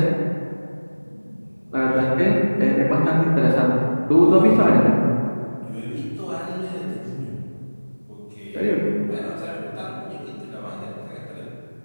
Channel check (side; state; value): both; inverted; correlation -1.00